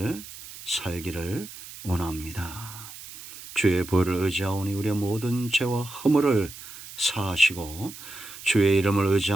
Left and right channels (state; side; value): noise; right; hiss, 15 dB below the sound